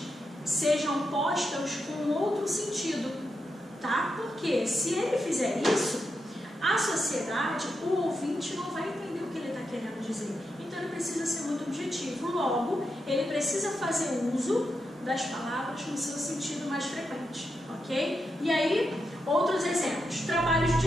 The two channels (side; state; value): both; normal; correlation 0.85